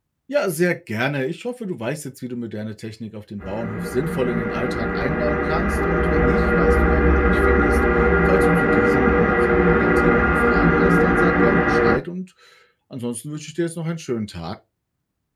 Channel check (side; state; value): both; identical; correlation 1.00